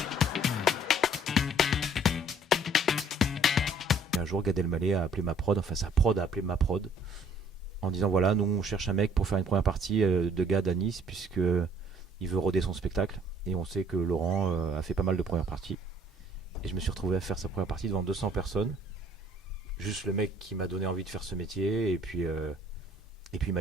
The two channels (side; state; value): both; normal; correlation 0.58